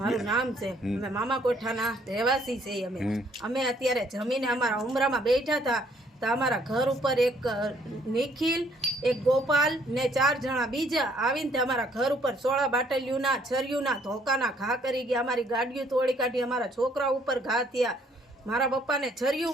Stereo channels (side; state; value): both; normal; correlation 0.65